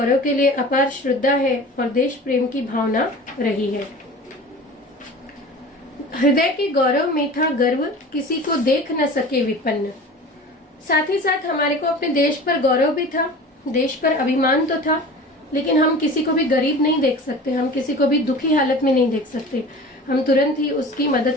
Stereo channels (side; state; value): both; normal; correlation 0.38